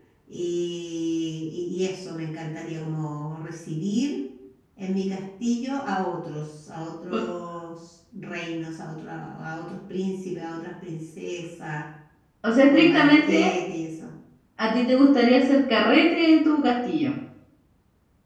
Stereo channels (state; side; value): identical; both; correlation 1.00